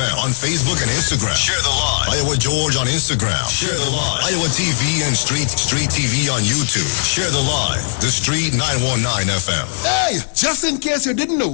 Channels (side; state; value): right; silent; 68 dB below the other